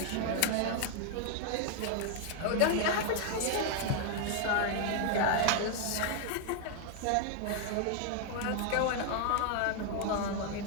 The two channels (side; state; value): both; different; correlation 0.00